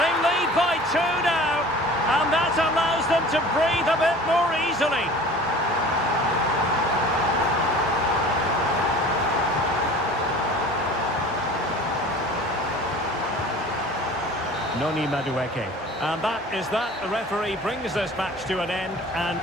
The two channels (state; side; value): normal; both; correlation 0.43